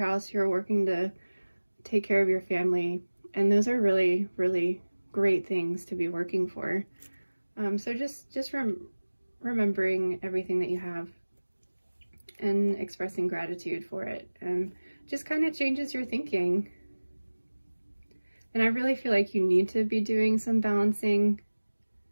you're working to take care of your family, and those are really, really great things to be working for. So just remembering everything that you have and expressing gratitude for it, and just kind of changes your thinking. And I really feel like you need to be doing some balancing.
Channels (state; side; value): inverted; both; correlation -1.00